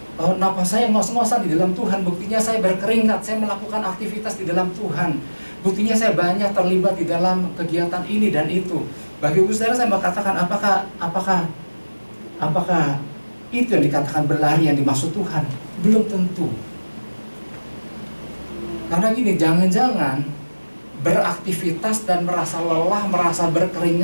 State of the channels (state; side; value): inverted; both; correlation -1.00